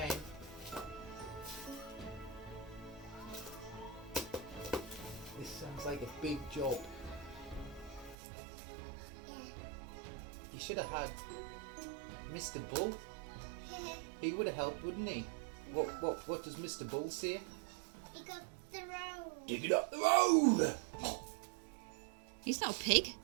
This sounds like a big job. Yeah. You should have had Mr. Bull. He would have helped, wouldn't he? What does Mr. Bull say? Dig up the road. Dig it up the road! He's not a pig.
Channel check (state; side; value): drops out; left; at 8.2 s